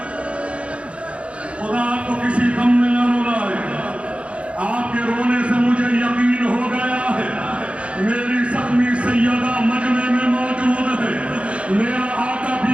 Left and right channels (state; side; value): late; left; 0.061 ms